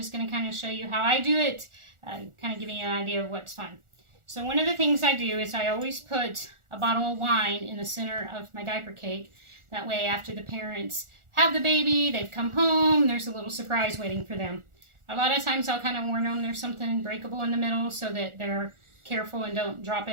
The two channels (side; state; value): left; late; 1.4 ms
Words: going to kind of show you how I do it, kind of giving you an idea of what's fun. So one of the things I do is I always put a bottle of wine in the center of my diaper cake. That way after the parents have the baby, they've come home, there's a little surprise waiting for them. A lot of times I'll kind of warn them there's something breakable in the middle so that they're careful and don't drop